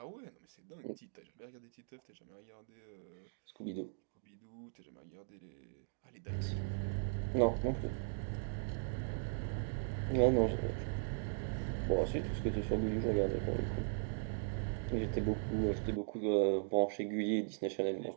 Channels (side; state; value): left; silent; digital silence